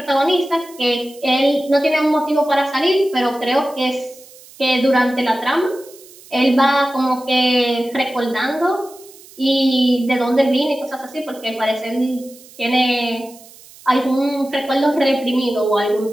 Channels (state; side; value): noise; right; hiss, 22 dB below the sound